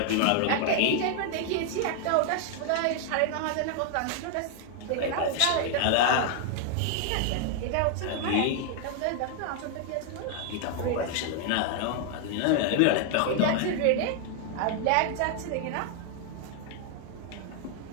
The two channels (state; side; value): different; both; correlation 0.00